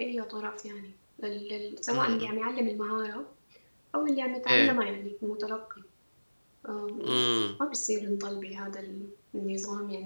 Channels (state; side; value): inverted; both; correlation -1.00